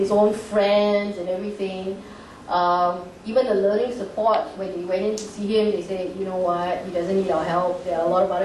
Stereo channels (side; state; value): both; identical; correlation 1.00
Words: own friends and everything. Even the learning support, when they went in to see him, they said, you know what, he doesn't need our help, there are a lot of